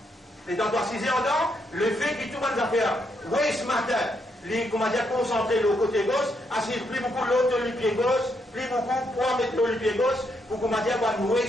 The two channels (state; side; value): normal; both; correlation 0.77